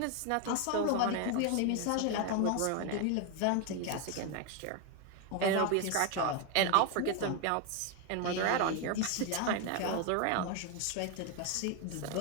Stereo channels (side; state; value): both; different; correlation 0.01